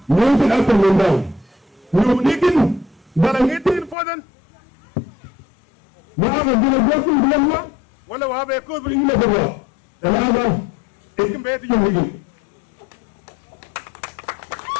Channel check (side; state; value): right; drops out; at 4.0 s